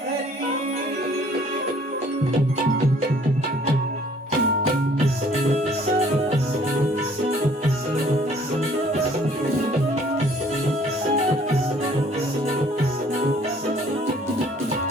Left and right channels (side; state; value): both; normal; correlation 0.57